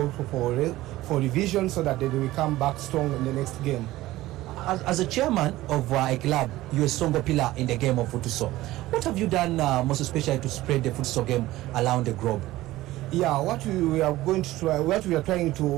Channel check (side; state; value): left; quieter; 16.8 dB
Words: for revision so that they will come back strong in the next game. As a chairman of a club, you're a stronger pillar in the game of futsal. What have you done most especially to spread the futsal game around the globe? Yeah, what we are trying